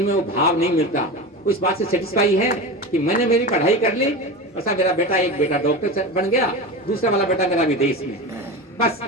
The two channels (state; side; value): normal; both; correlation 0.26